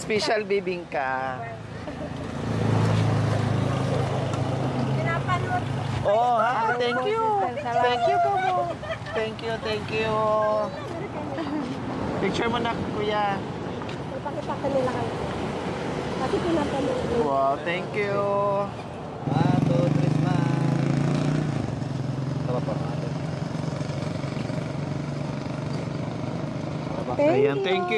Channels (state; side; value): identical; both; correlation 1.00